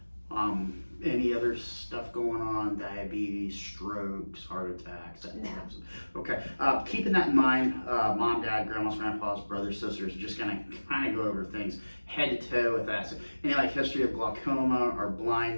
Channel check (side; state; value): both; inverted; correlation -1.00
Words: Any other stuff going on? Diabetes, strokes, heart attacks, that No. types of. Okay. Keeping that in mind, mom, dad, grandmas, grandpas, brothers, sisters, just gonna kind of go over things head to toe with that. So, any like history of glaucoma or